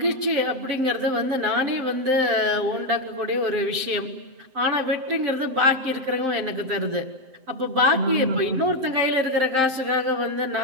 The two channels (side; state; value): left; late; 7.7 ms